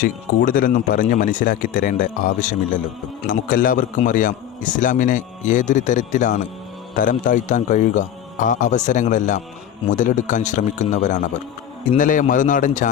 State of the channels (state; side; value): quieter; right; 10.2 dB